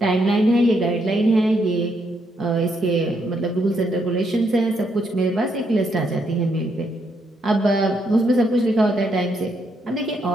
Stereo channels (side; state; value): both; normal; correlation 0.76